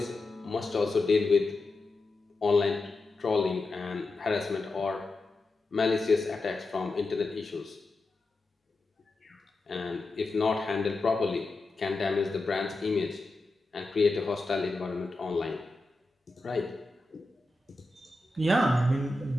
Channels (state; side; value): quieter; right; 3.0 dB